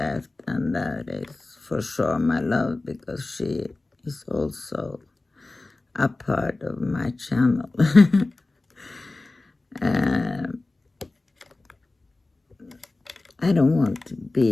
and that is for sure my love, because she is also a part of my channel. I don't want to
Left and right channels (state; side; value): quieter; right; 3.1 dB